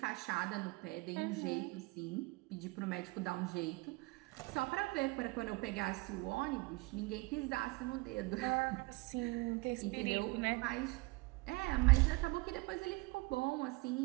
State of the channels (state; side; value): quieter; left; 24.8 dB